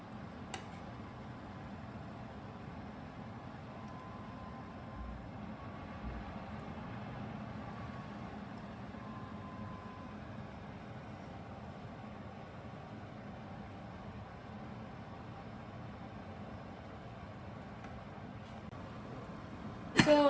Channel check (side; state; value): both; identical; correlation 1.00